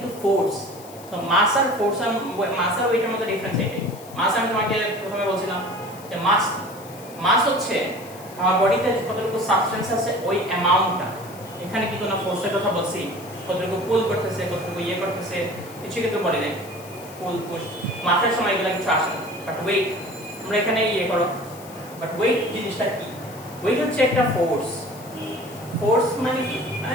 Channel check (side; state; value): left; noise; hiss, 20 dB below the sound